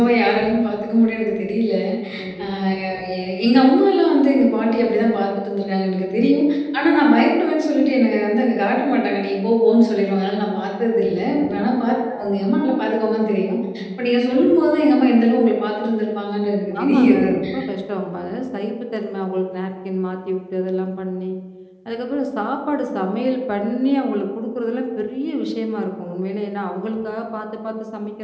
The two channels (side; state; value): both; identical; correlation 1.00